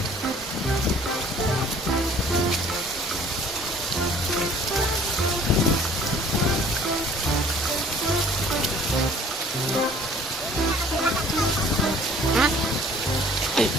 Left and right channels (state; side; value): normal; both; correlation 0.53